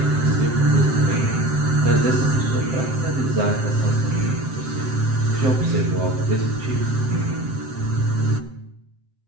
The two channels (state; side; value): late; left; 7.7 ms